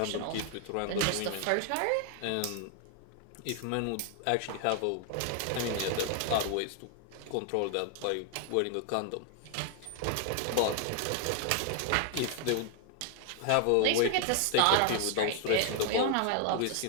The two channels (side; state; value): both; different; correlation 0.00